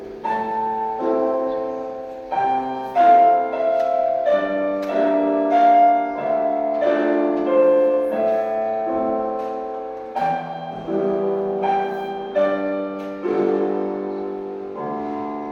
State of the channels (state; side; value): identical; both; correlation 1.00